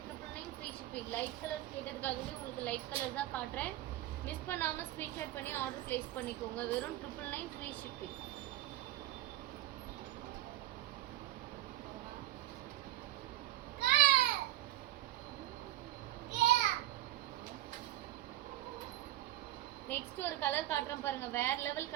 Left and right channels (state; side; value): quieter; left; 15.4 dB